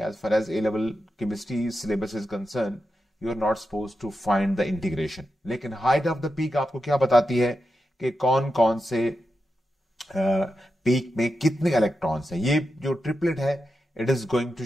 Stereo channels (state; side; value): normal; both; correlation 0.89